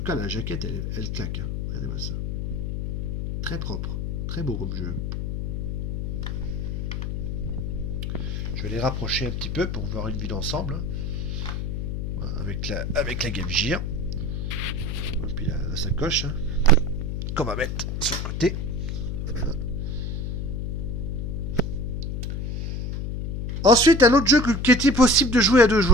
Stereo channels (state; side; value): noise; left; hum, 2 dB below the sound